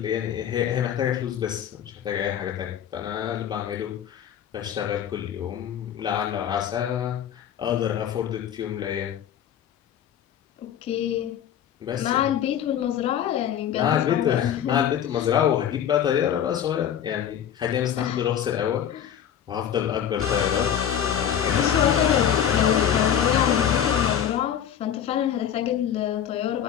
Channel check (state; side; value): quieter; right; 9.4 dB